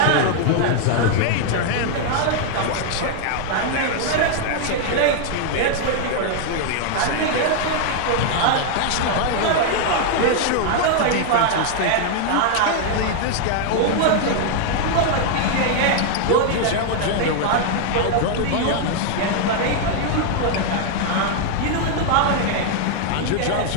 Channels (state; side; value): different; both; correlation 0.00